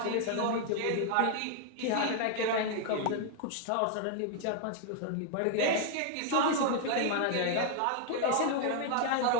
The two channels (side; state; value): both; different; correlation 0.00